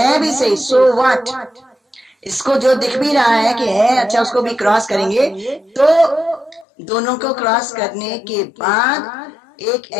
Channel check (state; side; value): drops out; right; at 6.7 s